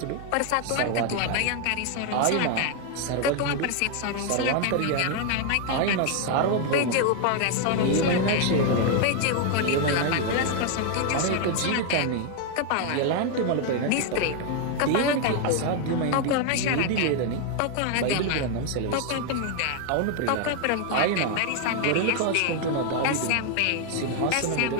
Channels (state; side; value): different; both; correlation 0.01